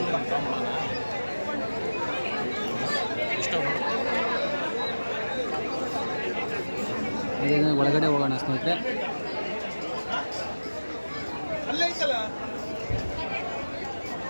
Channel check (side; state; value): both; inverted; correlation -1.00